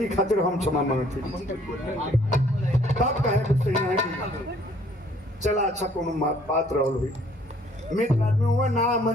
खातिर हम क्षमा मांगते तब कहे कुछ नहीं है कि चला अच्छा कोनो बात रहल हुई मित्र आदमी हुआ ना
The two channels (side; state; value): both; normal; correlation 0.60